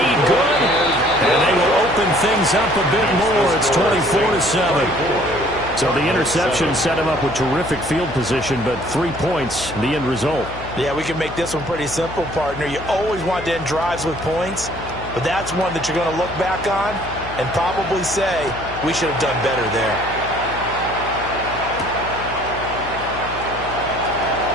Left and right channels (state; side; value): noise; left; hum, 12 dB below the sound